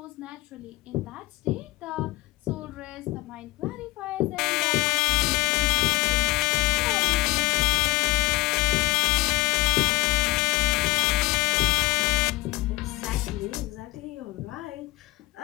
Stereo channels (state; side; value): quieter; right; 20.5 dB